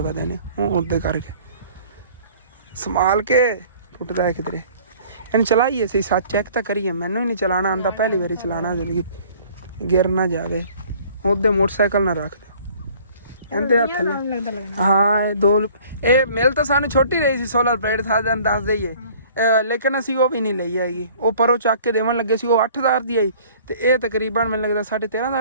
ਵਧੇ ਨੇ, ਉਹ ਉਹਦੇ ਕਰਕੇ ਸੰਭਾਲ ਕੇ ਟੁੱਟਦਾ ਹੈ ਕਿਧਰੇ। ਇਹਨੂੰ ਚਲਾਈਏ ਅਸੀਂ ਸੱਚ ਚੈੱਕ ਤਾਂ ਕਰੀਏ, ਮੈਨੂੰ ਹੀ ਨਹੀਂ ਚਲਾਉਣਾ ਆਉਂਦਾ, ਪਹਿਲੀ ਵਾਰੀ ਚਲਾਉਣਾ ਜ਼ਿੰਦਗੀ, ਗਿਰ ਨਾ ਜਾਵੇ। ਉਹਦੇ ਮੋਟਰਸਾਈਕਲ ਨਾ ਰੱਖ ਦਿਓ ਇਹਦੇ ਹੱਥ ਥੱਲੇ। ਹਾਂ ਇਹ ਮਿਲ ਤਾਂ ਸਾਨੂੰ ਛੋਟੀ ਰਹੀ ਸੀ ਸੋਲਰ ਪਲੇਟ, ਸਾਨੂੰ ਦੱਸ ਦਈਏ, ਲੇਕਿਨ ਅਸੀਂ ਉਹ ਵੀ ਨਹੀਂ ਲਈ ਹੈਗੀ। ਉਹ ਪਰੋਂ ਚੱਕ ਕੇ ਦੇਵਣ ਲੱਗੇ ਸੀ, ਉਹ 8000 ਦੀ ਆਈ, ਤੇ ਇਹ ਤਕਰੀਬਨ ਮੈਨੂੰ ਲੱਗਦਾ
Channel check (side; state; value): both; inverted; correlation -0.52